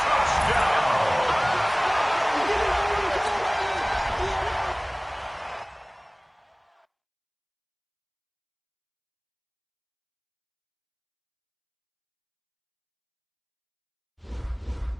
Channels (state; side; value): identical; both; correlation 1.00